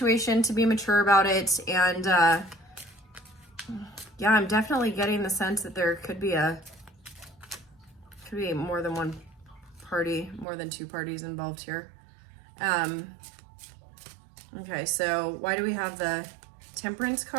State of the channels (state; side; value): drops out; left; at 10.5 s